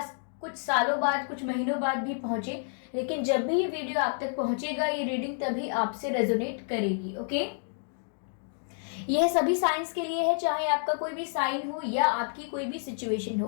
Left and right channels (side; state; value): right; silent; digital silence